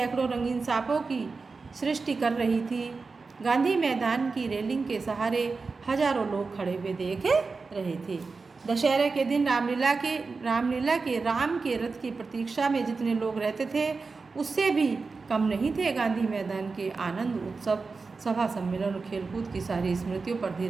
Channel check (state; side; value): quieter; left; 4.3 dB